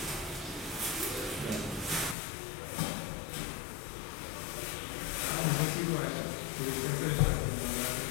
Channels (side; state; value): right; drops out; at 2.1 s